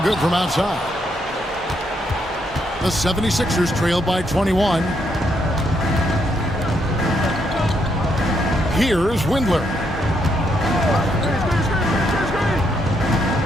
good from outside. The 76ers trail by 21. Here's Windler.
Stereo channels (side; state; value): both; normal; correlation 0.76